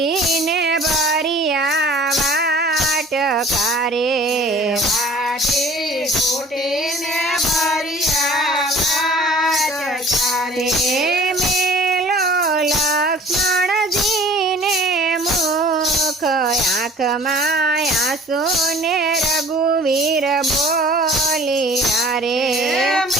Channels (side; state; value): both; normal; correlation 0.49